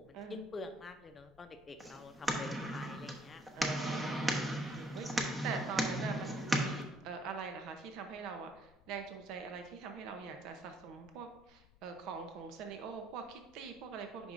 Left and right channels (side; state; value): left; noise; rumble, 26 dB below the sound